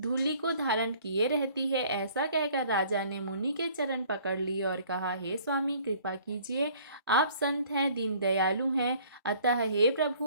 को धारण किए रहती है। ऐसा कहकर राजा ने मुनि के चरण पकड़ लिए और कहा, हे स्वामी, कृपा कीजिए। आप संत हैं, दीन दयालु हैं, अतः हे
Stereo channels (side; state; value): both; inverted; correlation -0.55